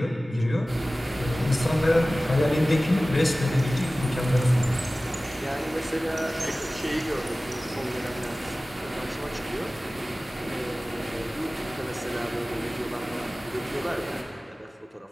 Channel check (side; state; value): both; normal; correlation 0.97